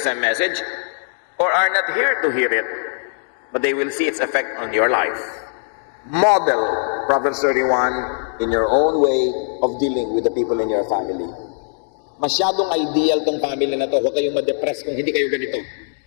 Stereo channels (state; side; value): silent; right; digital silence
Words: message or are not here to hear it, but they will see its effect on your life. Model Proverbs 31 in your own way of dealing with the people in your family. Masyadong ideal tong family na to. Huwag kayong ma-depress kung hindi kayo ganito.